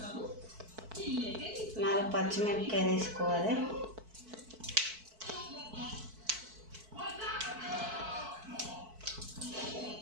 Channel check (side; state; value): left; late; 4.5 ms